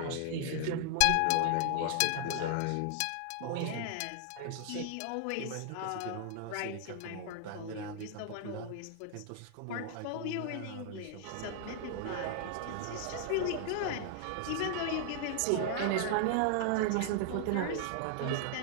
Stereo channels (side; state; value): both; different; correlation 0.00